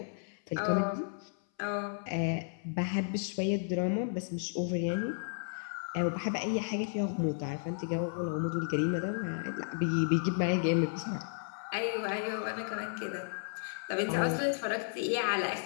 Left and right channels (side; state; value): right; silent; 56 dB below the other